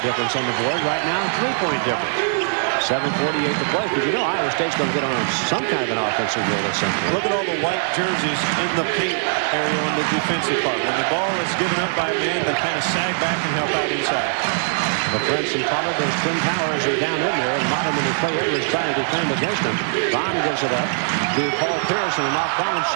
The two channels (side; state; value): left; silent; digital silence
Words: difference on the board. Right now, 3-point difference. 7:48 to play. Because you know Iowa State's going to get on some kind of an offensive roll at some point. Look at all the white jerseys in the paint area on the defensive part. When the ball is given up by a man, they kind of sag back and help out inside. LaFrance and Pollard, those twin towers are down in there, and Moderman and Clay Edwards trying to defend against them. Vaughn gives it up to Paul Pierce, and an off-balance